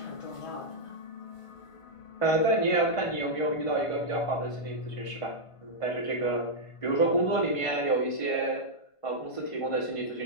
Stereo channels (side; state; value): right; late; 1.5 ms